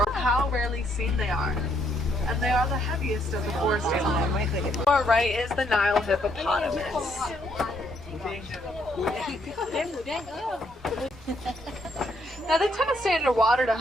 How rarely seen they are. And they are the heaviest of the forest animals. To our right is the Nile hippopotamus. Now they tend to stay underwater to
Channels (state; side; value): normal; both; correlation 0.72